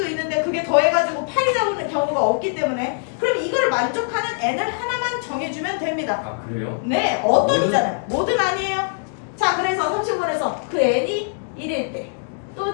있는데 그게 더해가지고 8이 나오는 경우가 없기 때문에 그럼 이걸 만족하는 n을 하나만 정해주면 됩니다. 아 그래요? 네, 어떤이잖아요. 뭐든 아니에요. 자, 그래서 30번에서 그 n이 1일 때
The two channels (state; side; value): silent; right; digital silence